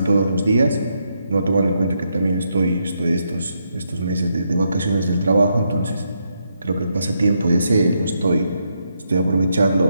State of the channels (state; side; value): inverted; both; correlation -0.80